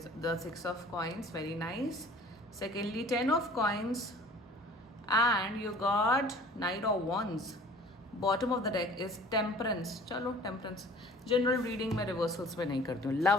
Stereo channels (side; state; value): both; normal; correlation 0.48